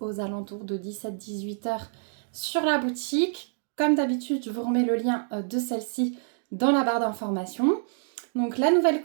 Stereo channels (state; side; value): silent; left; digital silence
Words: alentours de 17-18 heures sur la boutique. Comme d'habitude, je vous remets le lien de celle-ci dans la barre d'informations. Donc la nouvelle